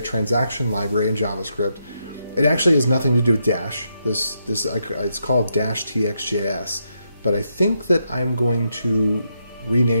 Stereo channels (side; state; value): both; inverted; correlation -0.81